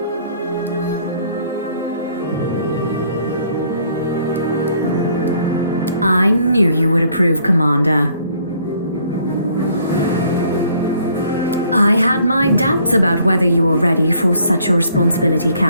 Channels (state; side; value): inverted; both; correlation -0.62